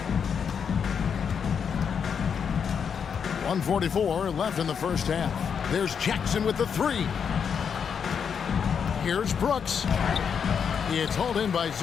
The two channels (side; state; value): right; quieter; 7.0 dB